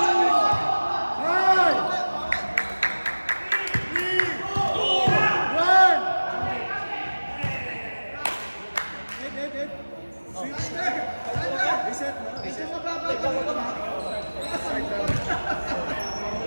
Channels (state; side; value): inverted; both; correlation -1.00